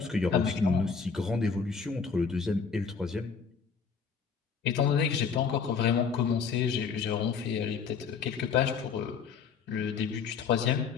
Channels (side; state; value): right; quieter; 5.9 dB